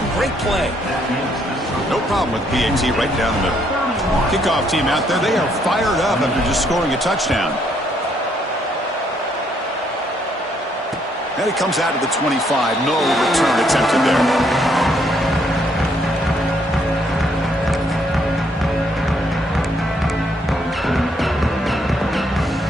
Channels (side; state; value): both; normal; correlation 0.71